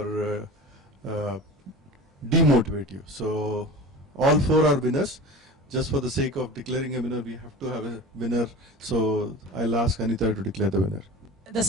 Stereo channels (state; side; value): normal; both; correlation 0.34